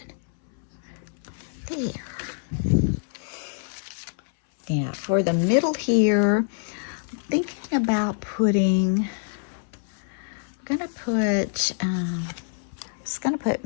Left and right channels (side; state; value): right; silent; 61 dB below the other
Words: There. Yeah, for the middle here, I'm thinking about putting, I'm just gonna put